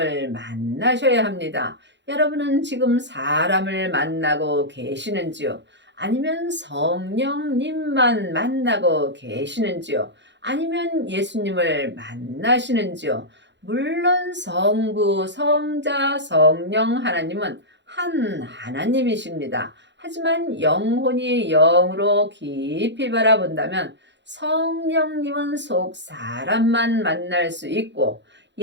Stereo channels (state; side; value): late; left; 0.52 ms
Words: 만나셔야 합니다. 여러분은 지금 사람을 만나고 계시는지요? 아니면 성령님만 만나고 계시는지요? 아니면 예수님을 만나시는지요? 물론 성부, 성자, 성령 하나님은 한 하나님이십니다. 하지만 영혼이 영으로 깊이 바라본다면 성령님은 속 사람만 만날 수 있고